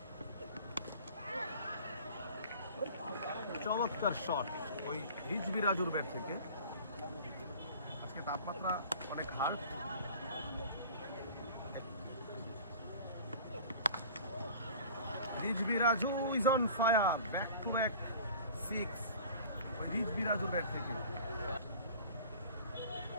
চমৎকার শট ওই রিজভি রাজুর ব্যাট থেকে। আজকে তাপমাত্রা অনেক hard. Rizvi Raju is on fire, back to back 6 ওই রিজভি রাজুর ব্যাট থেকে।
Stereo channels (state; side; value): inverted; both; correlation -0.43